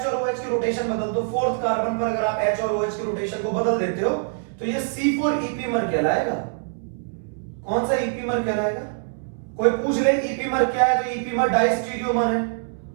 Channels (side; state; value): left; silent; 63 dB below the other